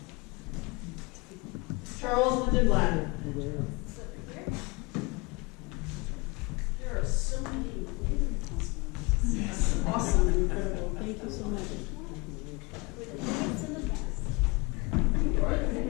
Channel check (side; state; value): right; quieter; 26.8 dB